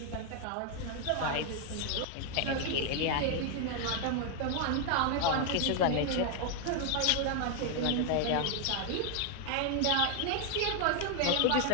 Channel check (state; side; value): different; both; correlation 0.00